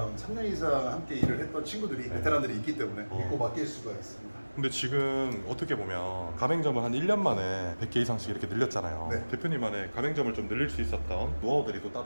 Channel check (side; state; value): both; inverted; correlation -1.00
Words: 3년 이상 함께 일을 했던 친구들이 베테랑들이 있기 때문에 믿고 맡길 수가 있습니다. 근데 지금 어떻게 보면 가맹점을 한 1년 만에 100개 이상씩 이렇게 늘렸잖아요. 네. 대표님만의 가맹점을 좀 늘릴 수 있었던 노하우들이 또